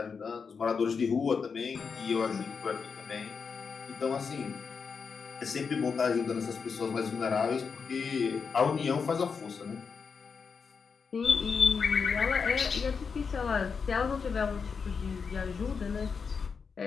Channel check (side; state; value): right; quieter; 5.6 dB